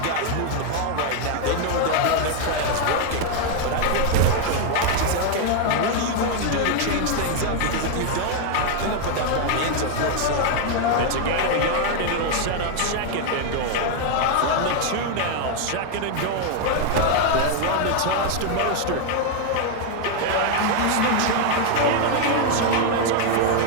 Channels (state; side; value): different; both; correlation 0.01